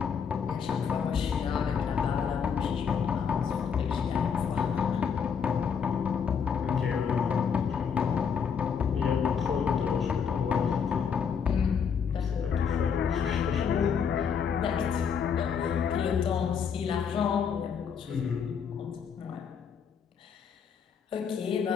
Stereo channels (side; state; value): right; quieter; 6.8 dB